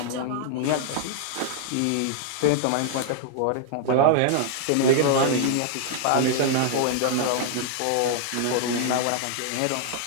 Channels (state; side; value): different; both; correlation 0.00